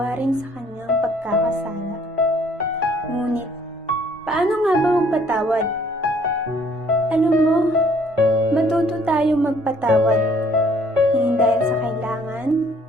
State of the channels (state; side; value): normal; both; correlation 0.60